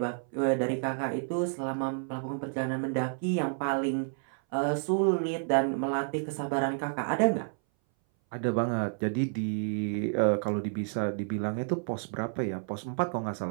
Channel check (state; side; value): silent; left; 58 dB below the other